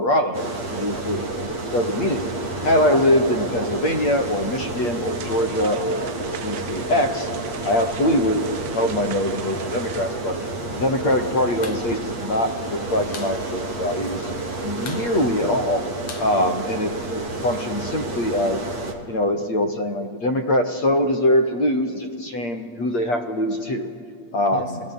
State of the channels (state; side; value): late; right; 8.5 ms